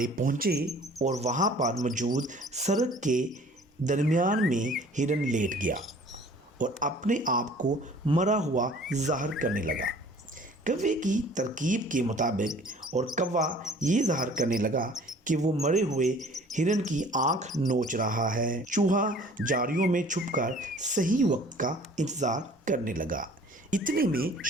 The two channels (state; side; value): normal; both; correlation 0.51